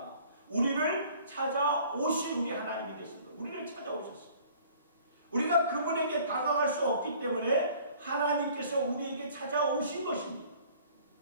우리를 찾아오신 우리 하나님이 되십니다. 우리를 찾아오셨어요. 우리가 그분에게 다가갈 수 없기 때문에 하나님께서 우리에게 찾아오신 것입니다.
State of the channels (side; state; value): both; inverted; correlation -0.52